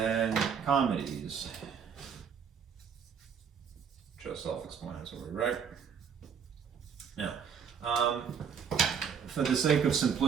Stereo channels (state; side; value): quieter; left; 7.0 dB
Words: comedies. Just self-explanatory, right? Now, for the sake of